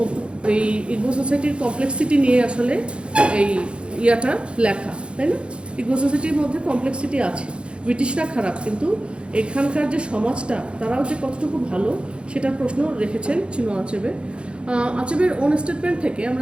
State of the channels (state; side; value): late; left; 0.057 ms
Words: ইগবো সোসাইটির কমপ্লেক্সিটি নিয়ে আসলে এই ইয়াটা লেখা, তাই না? ইগবো সোসাইটির মধ্যে কমপ্লেক্সিটি আছে। ব্রিটিশরা খারাপ, কিন্তু এখানকার যে সমাজটা, তারাও যে কতটুকু ভালো, সেটার প্রশ্ন রেখেছেন চিনোয়া আচেবে। আচেবের ওন স্টেটমেন্ট থেকে আমরা